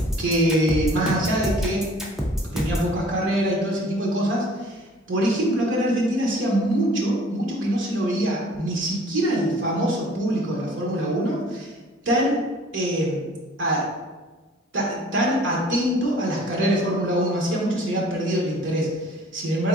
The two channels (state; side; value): normal; both; correlation 0.52